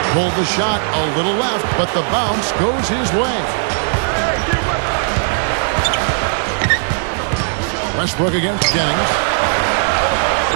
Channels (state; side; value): silent; left; 61 dB below the other